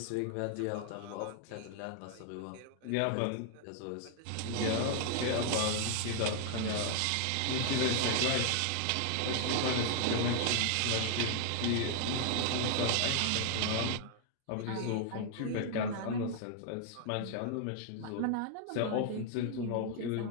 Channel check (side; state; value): both; different; correlation 0.00